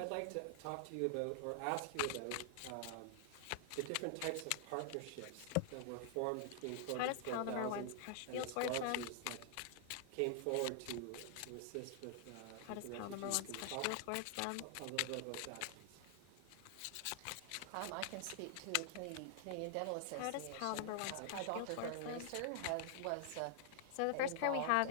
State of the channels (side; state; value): both; different; correlation -0.01